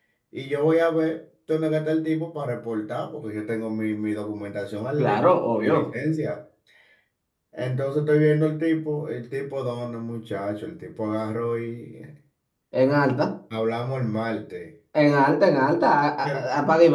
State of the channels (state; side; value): identical; both; correlation 1.00